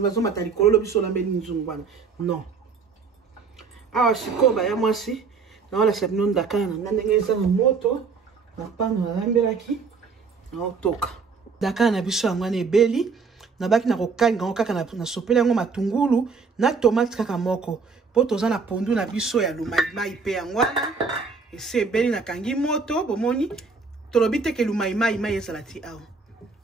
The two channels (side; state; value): left; quieter; 5.0 dB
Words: bazo matali kololo biso lambe nzungu wana. Non. Awa sikoba ya mwasi na wala sabino ndakana na ndenge eza na moto na pano na lambelaki na otoka. Dakana na biso yango na ebeli na baki na kokanga ngo kaka na sopela yango matungulu na tomate kaka moko. Po toza na pondu na biso ya lumai pe yango wana. Ese ebeli na kangi moto bomoni tolobi te ke lumai ezala ti awa.